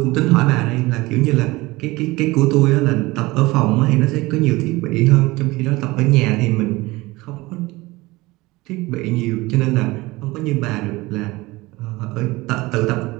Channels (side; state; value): left; quieter; 21.1 dB